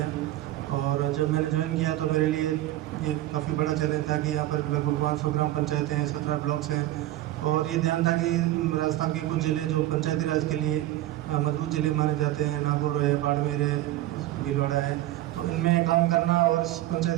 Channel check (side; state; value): left; quieter; 15.2 dB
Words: और जब मैंने ज्वाइन किया तो मेरे लिए ये काफ़ी बड़ा चैलेंज था कि यहाँ पर लगभग 500 ग्राम पंचायतें हैं, 17 ब्लॉक्स हैं, और ये ध्यान था कि राजस्थान के कुछ ज़िले जो पंचायती राज के लिए मजबूत ज़िले माने जाते हैं, नागौर है, बाड़मेर है, भीलवाड़ा है, तो इनमें काम करना और इस